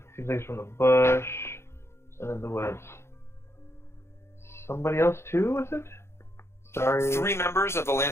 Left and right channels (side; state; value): right; late; 0.13 ms